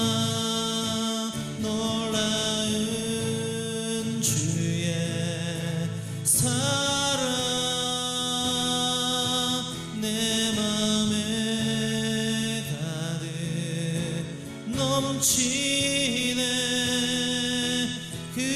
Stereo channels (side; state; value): both; identical; correlation 1.00